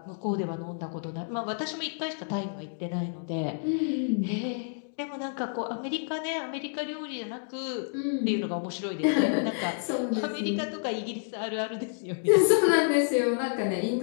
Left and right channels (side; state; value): right; silent; digital silence